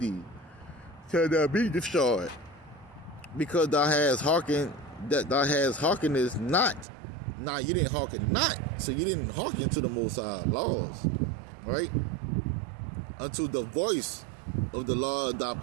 till thou be destroyed, because thou hast hearkened not. Now you didn't hearken not, so you didn't hearken to the Most High laws, right? Unto the voice of the Lord thy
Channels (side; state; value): left; drops out; at 6.9 s